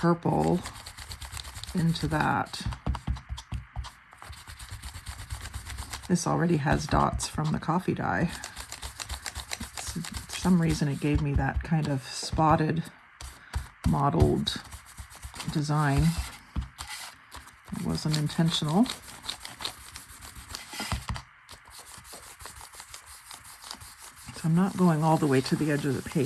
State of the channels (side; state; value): both; identical; correlation 1.00